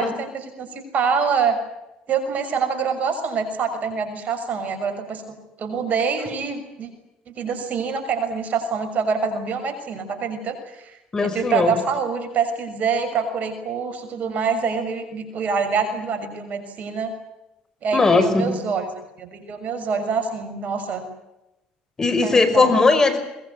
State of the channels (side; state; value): both; normal; correlation 0.60